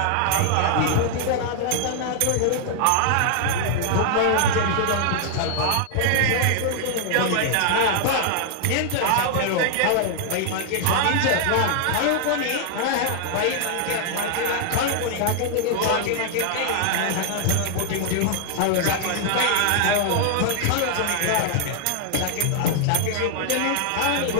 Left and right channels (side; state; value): both; different; correlation -0.01